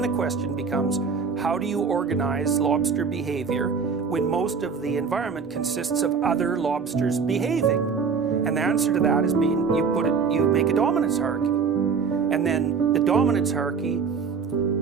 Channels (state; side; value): quieter; left; 5.7 dB